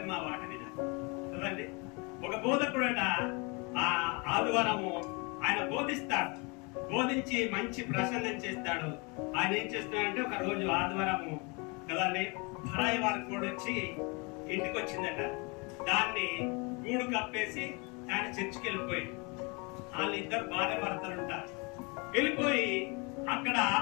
మా మాట వినాలి కదండి. ఒక బోధకుడట ఆదివారము ఆయన బోధిస్తాడు, బోధించి మంచి ప్రసంగం చేస్తాడు. ఆయన ఏం చేస్తున్నాడంటే ఒక రోజు ఆదివారము కదండి పరాయి వారి కోడి వచ్చి ఇంటికి వచ్చిందట. దాన్ని గూడు కప్పేసి ఆయన చర్చికి వెళ్ళిపోయాడు. వాళ్ళిద్దరు భార్య భర్తలు ఉంటారు. వెళ్ళిపోయి అక్కడ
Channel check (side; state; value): right; quieter; 30.0 dB